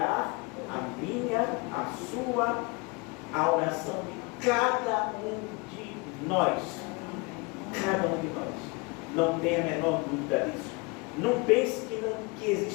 a minha, a sua, a oração de cada um de nós. Cada um de nós. Não tenha a menor dúvida disso. Não pense que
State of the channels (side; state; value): right; quieter; 28.0 dB